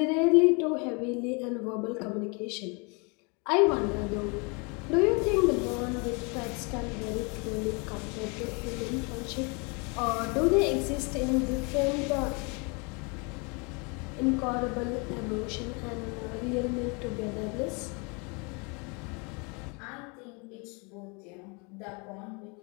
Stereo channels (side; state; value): right; quieter; 31.9 dB